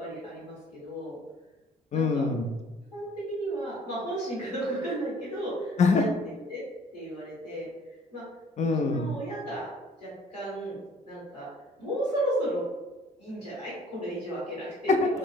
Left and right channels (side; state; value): both; normal; correlation 0.56